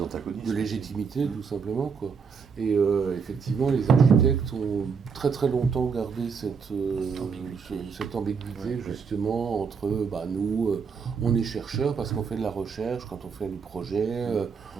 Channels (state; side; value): quieter; left; 5.9 dB